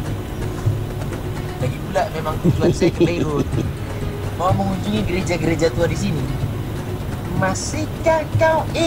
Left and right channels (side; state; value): both; identical; correlation 1.00